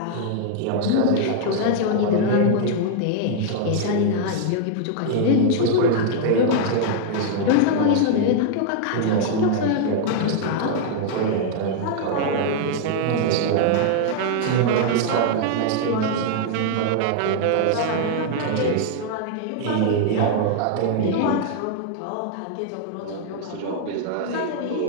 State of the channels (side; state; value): both; different; correlation 0.00